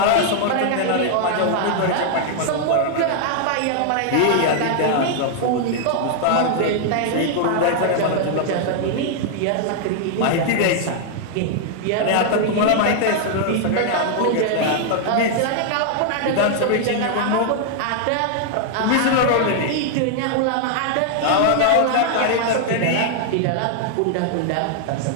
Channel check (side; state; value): both; different; correlation 0.00